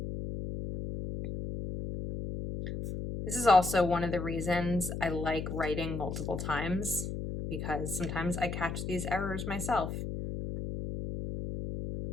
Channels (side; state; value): left; noise; hum, 5 dB below the sound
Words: This is also one of the reasons I like writing multiple times because sometimes I catch these errors myself.